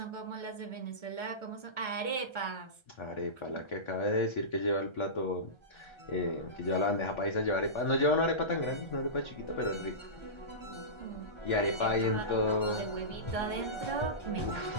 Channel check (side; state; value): right; late; 1.3 ms